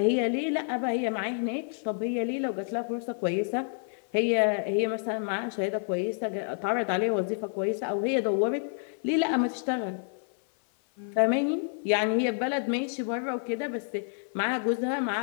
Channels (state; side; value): silent; right; 55 dB below the other